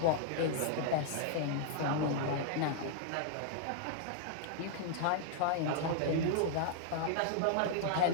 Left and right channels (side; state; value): both; different; correlation 0.00